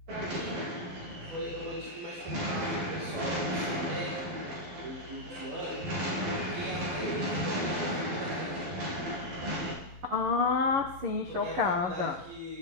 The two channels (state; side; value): late; left; 11 ms